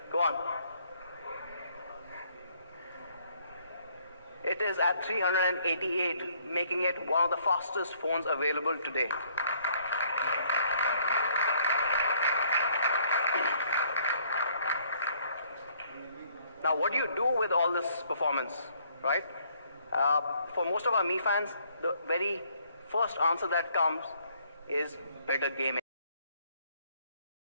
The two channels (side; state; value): both; inverted; correlation -0.64